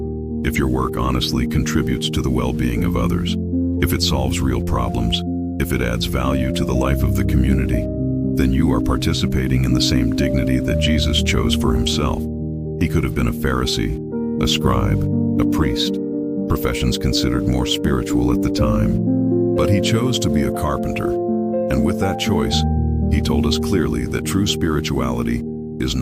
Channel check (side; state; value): both; identical; correlation 1.00